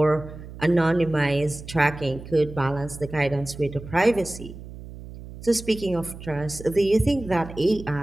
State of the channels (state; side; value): noise; right; hum, 14 dB below the sound